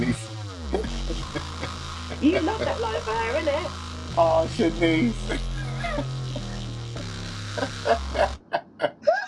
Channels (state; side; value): identical; both; correlation 1.00